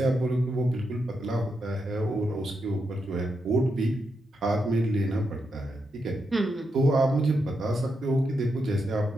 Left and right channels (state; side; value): normal; both; correlation 0.84